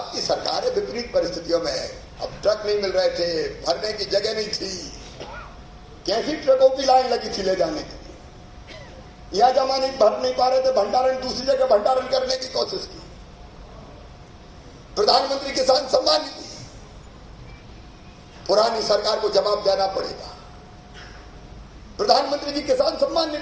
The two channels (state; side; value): identical; both; correlation 1.00